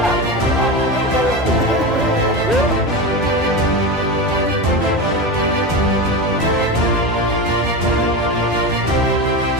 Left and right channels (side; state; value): both; normal; correlation 0.22